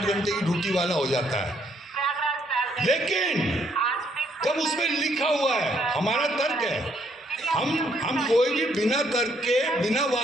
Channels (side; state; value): both; normal; correlation 0.70